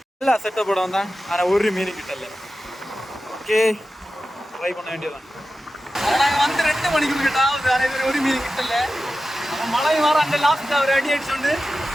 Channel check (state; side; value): normal; both; correlation 0.94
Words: எல்லா செட்டப்போட வந்தான். ஆனால் ஒரு மீன் கிட்டல. ஓகே ட்ரை பண்ண வேண்டியதான். நாங்கள் வந்து 2 மணிக்கு கிட்டாவது ஆனால் ஒரு மீன் கிட்டல. அப்போ மழை மாற அந்த லாஸ்ட்டாக ஒரு அடி அடிச்சுண்டு